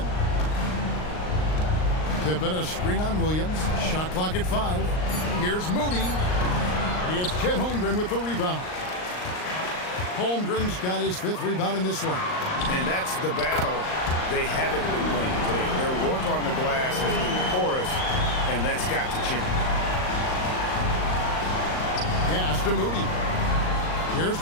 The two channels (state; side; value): late; right; 39 ms